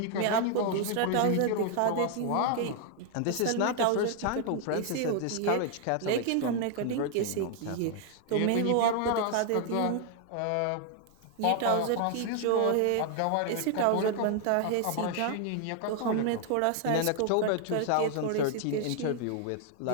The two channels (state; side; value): different; both; correlation 0.00